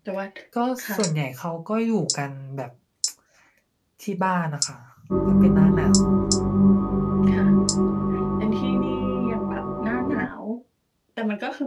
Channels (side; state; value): both; identical; correlation 1.00